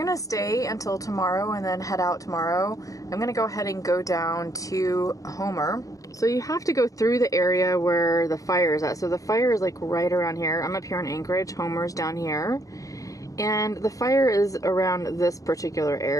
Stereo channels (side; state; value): right; late; 0.16 ms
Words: stay until tomorrow and then head out tomorrow. I'm gonna go ahead and go down to Homer. So you have to go through the area where the fire is at. So the fire is like right around here. I'm up here in Anchorage, Homer's down here. And the fire is around this particular